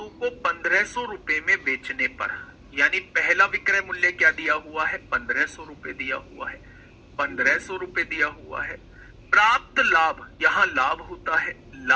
को 1500 रुपए में बेचने पर, यानी पहला विक्रय मूल्य क्या दिया हुआ है? 1500 रुपए दिया हुआ है। 1500 रुपए दिया हुआ है। प्राप्त लाभ, यहां लाभ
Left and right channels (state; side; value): identical; both; correlation 1.00